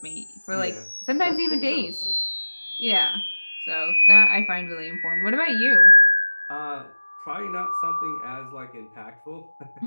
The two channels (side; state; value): both; inverted; correlation -1.00